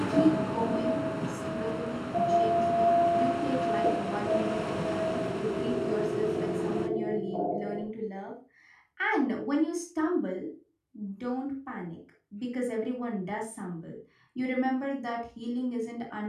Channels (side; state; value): both; identical; correlation 1.00